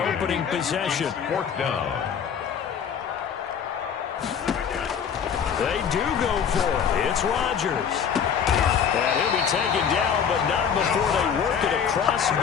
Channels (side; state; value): right; quieter; 7.5 dB